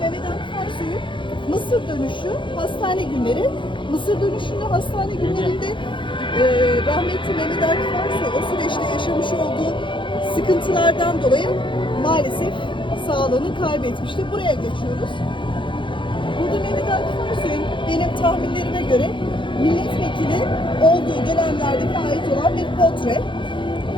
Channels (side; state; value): right; late; 0.24 ms